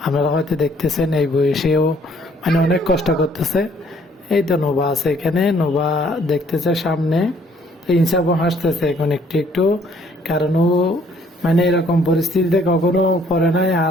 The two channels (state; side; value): normal; both; correlation 0.63